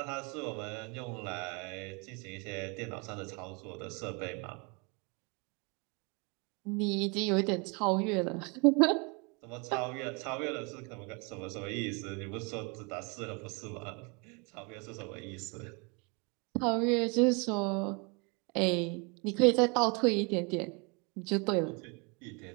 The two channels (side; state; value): left; quieter; 31.6 dB